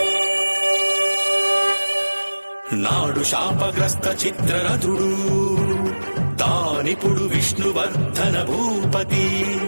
నాడు శాపగ్రస్త చిత్రరథుడు తానిపుడు విష్ణువర్ధన భూపతి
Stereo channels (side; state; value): both; inverted; correlation -1.00